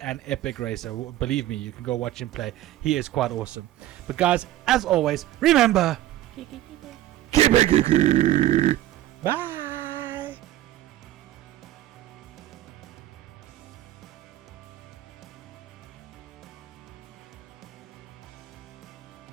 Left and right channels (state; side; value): quieter; left; 14.3 dB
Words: epic racer. Believe me, you can go watch him play. He is quite awesome. But guys, as always, remember... Keep it geeky. Bye.